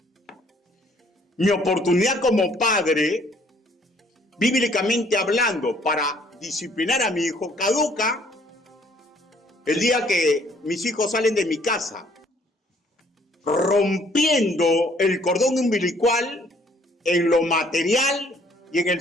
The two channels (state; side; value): normal; both; correlation 0.62